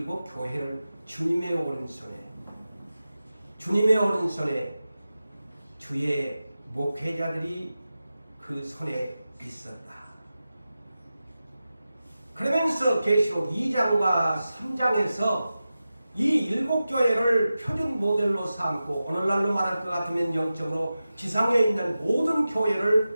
교회를 주님의 오른손에 주의 목회자들이 그 손에 있었다. 그러면서 계시록 2장과 3장에서 이 7교회를 표준 모델로 삼고 오늘날로 말할 것 같으면 영적으로 지상에 있는 모든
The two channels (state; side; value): inverted; both; correlation -0.94